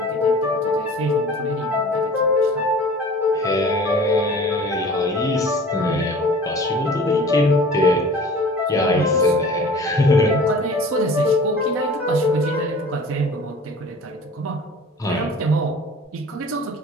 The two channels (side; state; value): both; normal; correlation 0.44